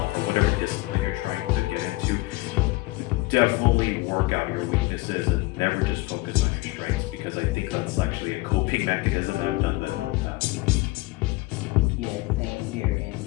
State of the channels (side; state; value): right; quieter; 21.5 dB